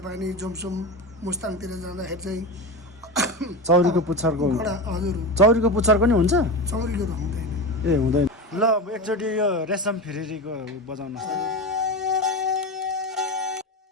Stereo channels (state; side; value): normal; both; correlation 0.22